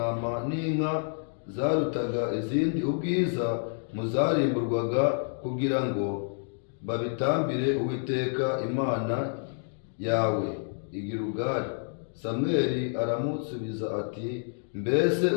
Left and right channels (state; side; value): silent; right; digital silence